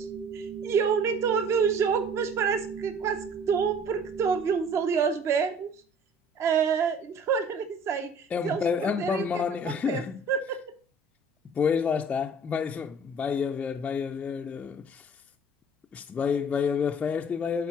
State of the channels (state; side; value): normal; both; correlation 0.50